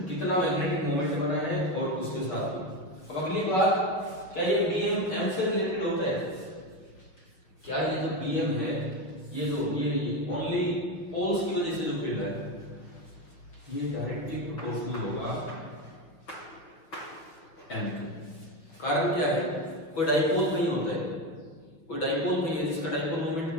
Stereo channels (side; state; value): right; late; 6.2 ms